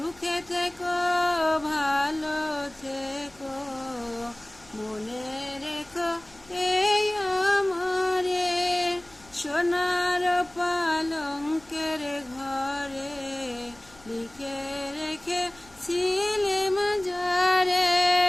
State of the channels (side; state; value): left; noise; rumble, 26 dB below the sound